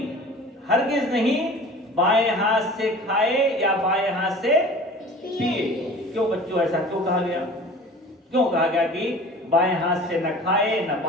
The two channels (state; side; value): normal; both; correlation 0.42